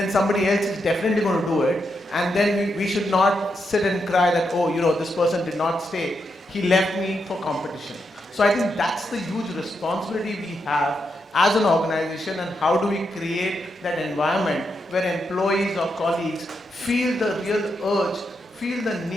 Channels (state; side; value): normal; both; correlation 0.83